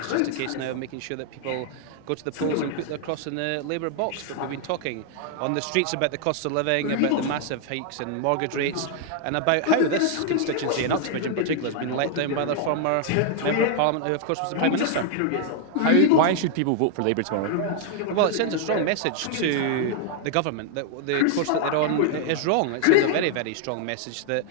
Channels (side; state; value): both; different; correlation 0.00